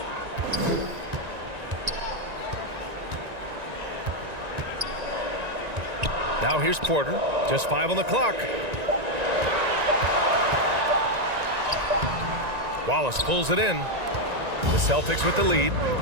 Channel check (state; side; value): late; left; 1.9 ms